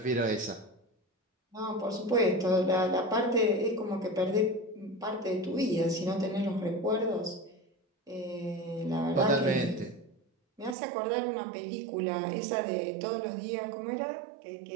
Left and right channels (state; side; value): drops out; left; at 10.8 s